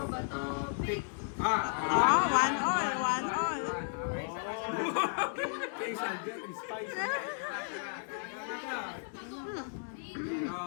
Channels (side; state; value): right; silent; 55 dB below the other